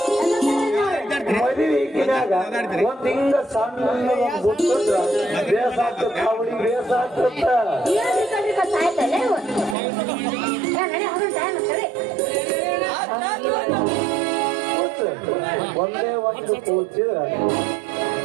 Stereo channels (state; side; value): drops out; left; at 9.8 s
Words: ಮದುವೆ ಈಗಿನಾಗ ಒಂದ್ ಹಿಂಗ ಸಣ್ಣ ಬಿಟ್ಟಂದ್ರ ಬೇಸ ಆಗ್ತದ. ಅವಳಿಗೆ ಬೇಸ ಆಗ್ತದ. ಸಾಯ್ತಲ್ಲ ಟೈಮ್ ಸರಿ ಒಂದೇ ಒಂದು ಕೂಚಿದ್ರ